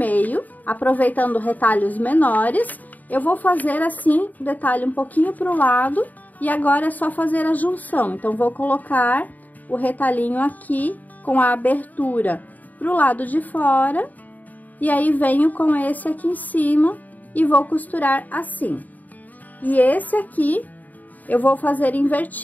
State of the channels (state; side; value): late; right; 0.080 ms